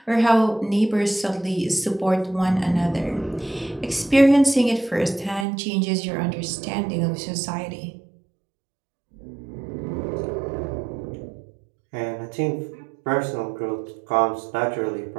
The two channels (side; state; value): left; drops out; at 5.5 s